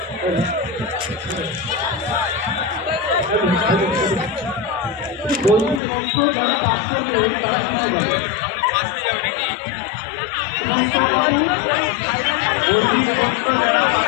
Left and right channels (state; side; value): drops out; right; at 5.8 s